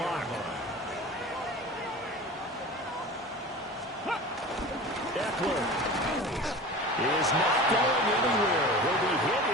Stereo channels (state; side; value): normal; both; correlation 0.35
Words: Eckler is not going anywhere. He'll be hit